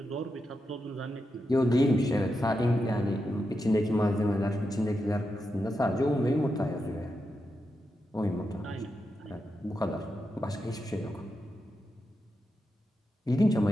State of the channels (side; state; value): both; normal; correlation 0.87